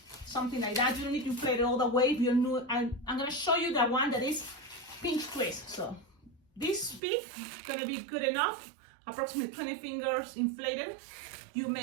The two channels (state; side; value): drops out; left; at 7.0 s